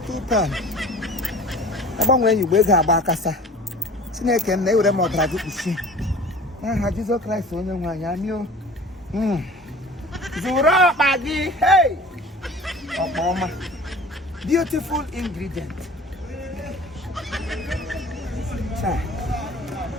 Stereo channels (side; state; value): both; normal; correlation 0.43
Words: £2. About when you wake up, Bakasa. Snake and they would have more tragic. Jesus Christ, only one. I knew. Zuro Maggi. Hey. Obama. Beautiful ingredient.